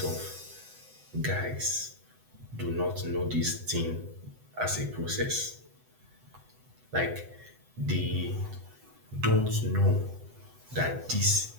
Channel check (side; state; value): left; late; 7.9 ms